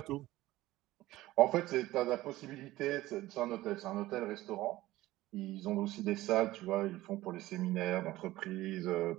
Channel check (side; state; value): left; quieter; 17.0 dB